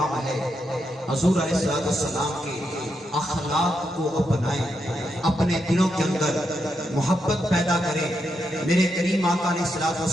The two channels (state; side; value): normal; both; correlation 0.82